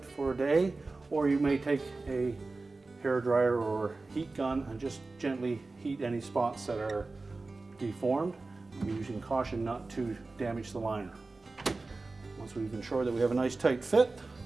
for a day, or you may take a hair dryer or heat gun and just gently heat any spots that are deformed, using caution not to damage the liner. Once we've ensured that we have a nice tight fit,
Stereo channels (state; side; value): quieter; left; 3.5 dB